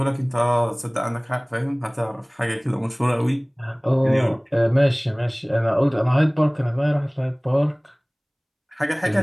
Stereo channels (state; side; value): identical; both; correlation 1.00